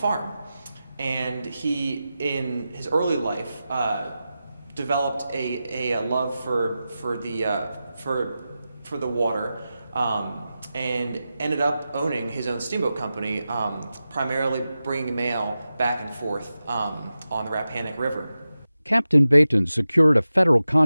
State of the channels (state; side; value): inverted; both; correlation -0.93